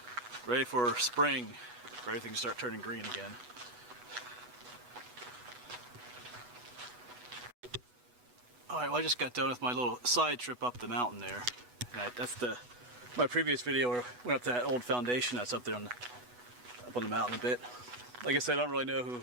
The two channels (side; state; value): left; late; 8.1 ms